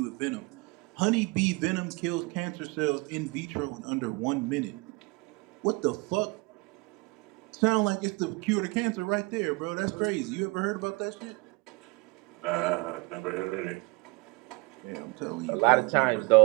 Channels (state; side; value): quieter; left; 26.3 dB